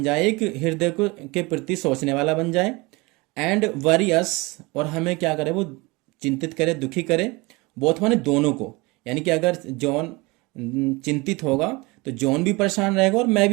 जाए, एक हृदय को के प्रति सोचने वाला बन जाए। एंड वरी अस, और हमें क्या करे, वो चिंतित करे, दुखी करे। बोथ माने दोनों को, यानी कि अगर जॉन चिंतित होगा तो जॉन भी परेशान रहेगा और मैं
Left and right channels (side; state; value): left; quieter; 24.5 dB